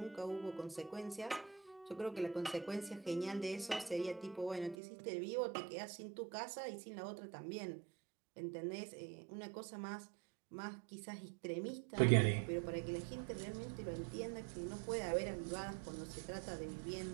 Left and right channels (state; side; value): drops out; left; at 4.8 s